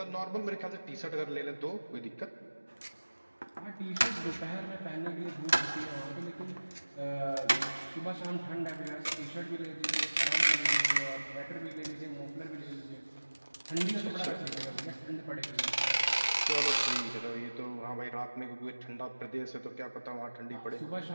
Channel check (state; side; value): inverted; both; correlation -1.00